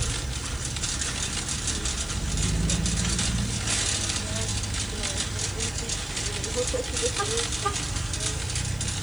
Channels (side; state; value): left; noise; hiss, 22 dB below the sound